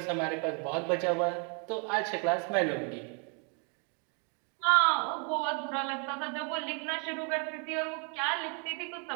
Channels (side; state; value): left; quieter; 37.6 dB